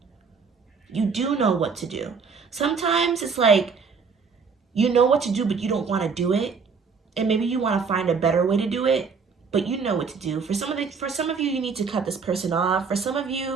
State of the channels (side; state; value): left; quieter; 5.4 dB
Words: You do know what to do. Sometimes it's like, you know what to do, but you don't want to do it. And maybe you want to find a better way to do it, but you know what to do. For some of you, you need to cut this person off. For some of